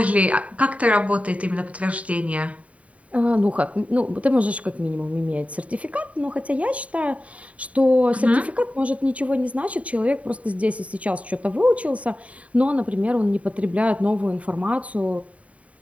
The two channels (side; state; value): left; late; 0.067 ms